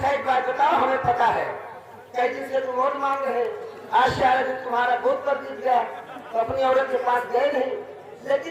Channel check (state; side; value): identical; both; correlation 1.00